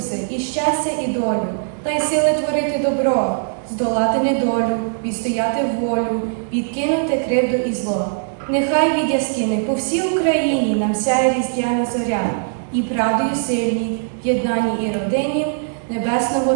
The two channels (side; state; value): left; silent; digital silence